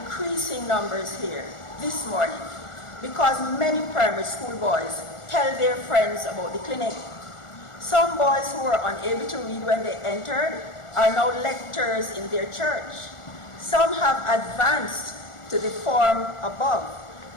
numbers here this morning because many primary school boys tell their friends about the clinic. Some boys who were unable to read when they entered are now lectors in their church. Some have advanced to the form above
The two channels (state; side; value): late; right; 1.4 ms